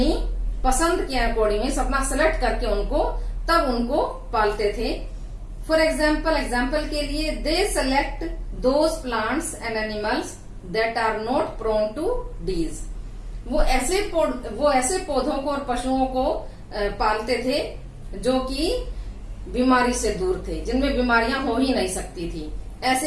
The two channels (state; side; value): identical; both; correlation 1.00